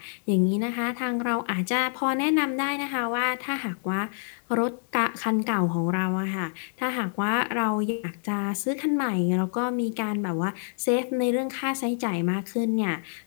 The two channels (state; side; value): silent; right; digital silence